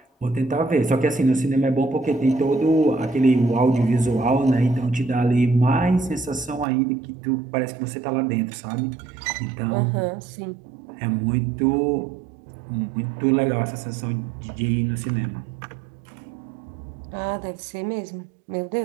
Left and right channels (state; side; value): drops out; left; at 6.7 s